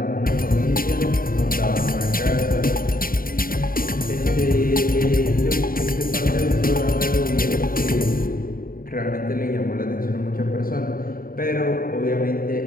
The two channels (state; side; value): late; right; 0.42 ms